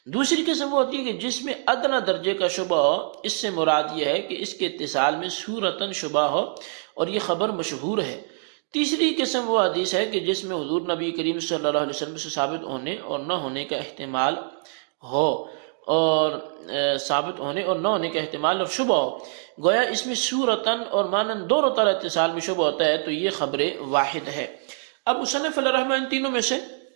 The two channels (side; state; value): left; silent; digital silence